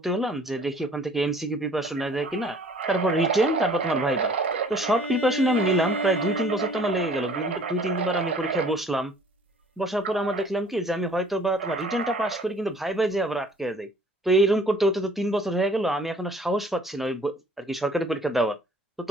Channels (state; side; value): normal; both; correlation 0.53